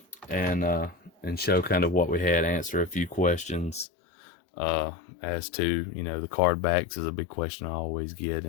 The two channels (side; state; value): right; drops out; at 3.9 s